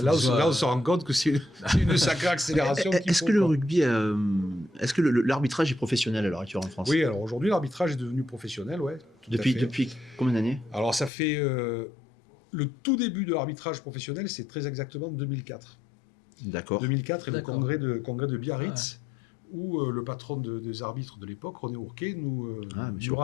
se rend compte que c'est une sacrée accélération. Est-ce que le rugby, est-ce que l'arbitrage est professionnel à l'heure actuelle en France? Oui, alors aujourd'hui l'arbitrage est devenu professionnel, ouais. Depuis combien d'années? Alors ça fait le tout début de l'arbitrage professionnel, c'est très exactement 2004. D'accord. 2004 et le congrès de Biarritz. Où le patron des arbitres de l'époque, René Ourquet, nous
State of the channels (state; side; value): drops out; right; at 11.1 s